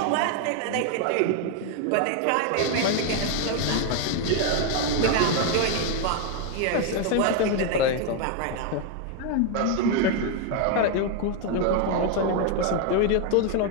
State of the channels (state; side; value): different; both; correlation 0.01